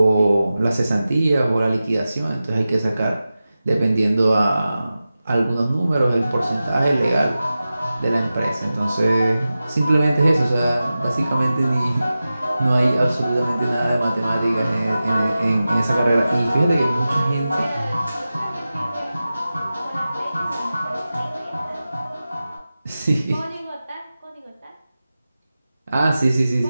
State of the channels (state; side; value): inverted; both; correlation -0.94